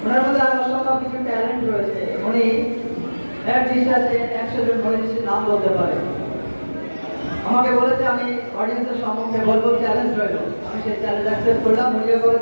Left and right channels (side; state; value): both; inverted; correlation -1.00